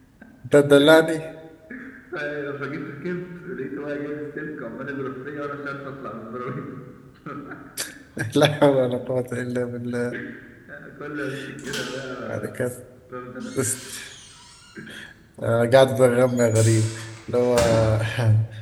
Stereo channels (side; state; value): both; identical; correlation 1.00